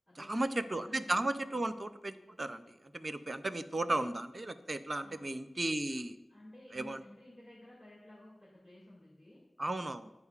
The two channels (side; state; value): both; normal; correlation 0.96